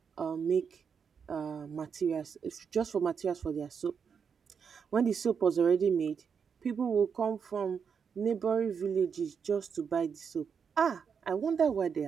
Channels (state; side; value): quieter; left; 6.5 dB